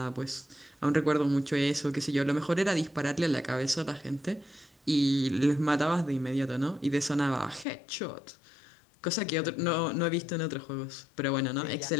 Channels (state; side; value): drops out; right; at 7.7 s